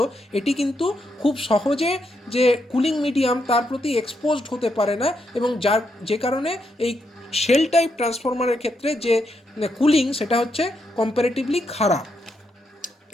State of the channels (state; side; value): normal; both; correlation 0.80